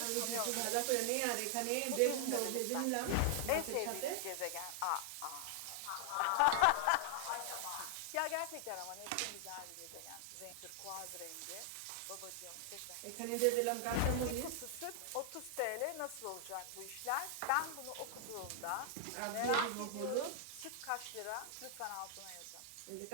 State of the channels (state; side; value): different; both; correlation 0.00